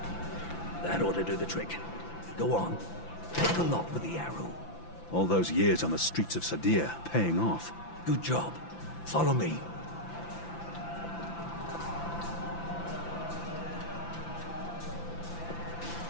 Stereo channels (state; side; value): late; right; 5.9 ms